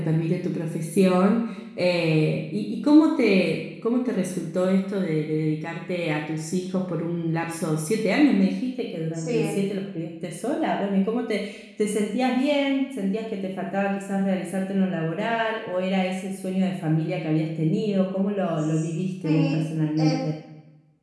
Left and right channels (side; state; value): both; identical; correlation 1.00